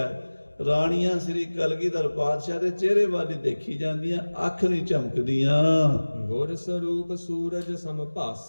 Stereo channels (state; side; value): inverted; both; correlation -1.00